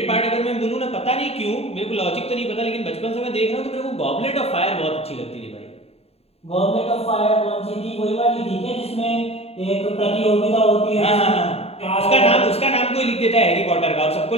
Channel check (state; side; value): late; right; 0.29 ms